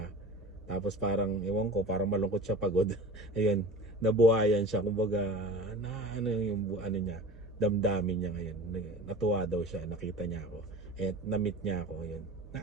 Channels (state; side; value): normal; both; correlation 0.38